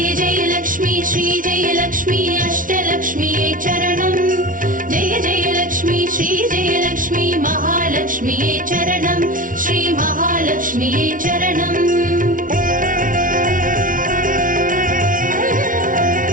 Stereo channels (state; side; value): late; left; 0.38 ms